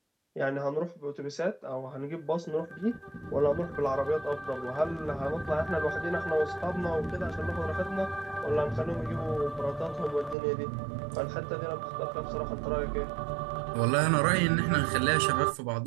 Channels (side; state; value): left; drops out; at 10.4 s